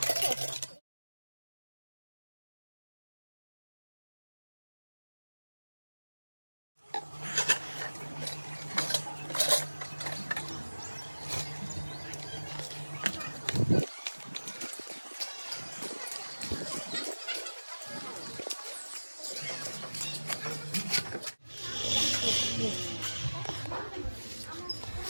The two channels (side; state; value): both; inverted; correlation -1.00